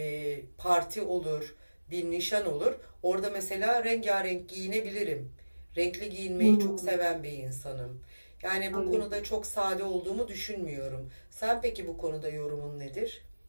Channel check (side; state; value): both; inverted; correlation -1.00